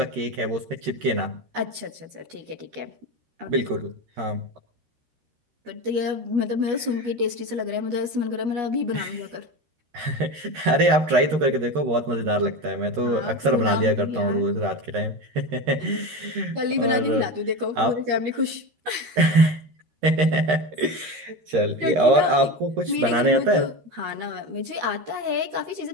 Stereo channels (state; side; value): late; left; 12 ms